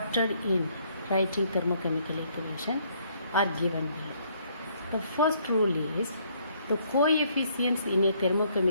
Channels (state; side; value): inverted; both; correlation -0.67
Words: in writing thermochemical equation are given below. The first rule is the coefficients in a